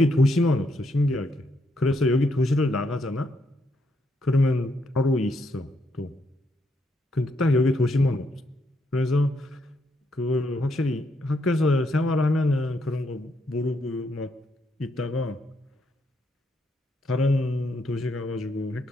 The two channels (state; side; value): normal; both; correlation 0.76